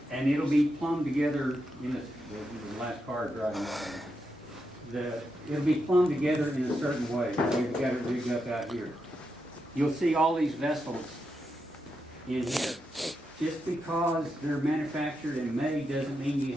and it'll be plumbed together in the last car driving. It'll be plumbed together in a certain way. We've got it rigged up out here. You'll see all these vessels in here. Just because they're manufactured and made doesn't mean you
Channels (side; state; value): both; normal; correlation 0.85